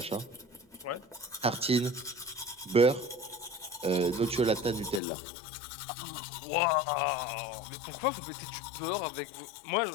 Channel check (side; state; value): right; drops out; at 5.0 s